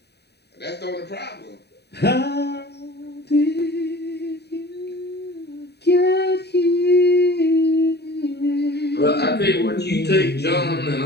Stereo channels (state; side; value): late; right; 0.48 ms